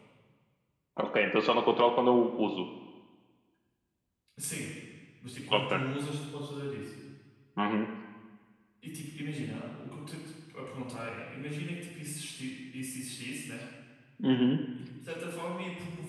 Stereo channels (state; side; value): identical; both; correlation 1.00